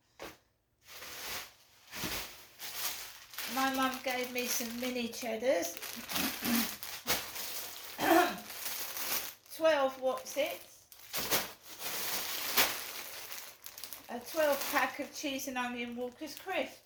My mum gave me some mini cheddars. 12 Wotsits. A 12 pack of cheese and onion Walker's crisp.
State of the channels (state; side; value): identical; both; correlation 1.00